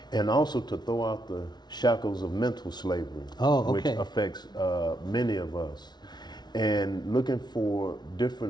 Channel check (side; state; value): right; late; 0.20 ms